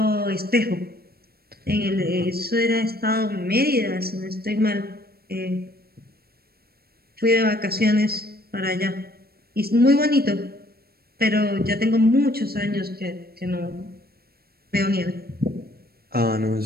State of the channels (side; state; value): left; late; 0.45 ms